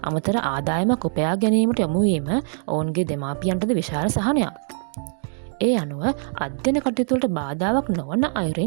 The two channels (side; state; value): left; silent; 63 dB below the other